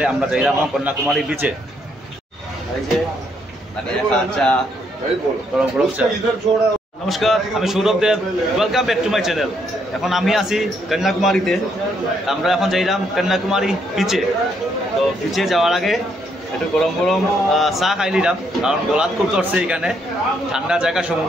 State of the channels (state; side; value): normal; both; correlation 0.73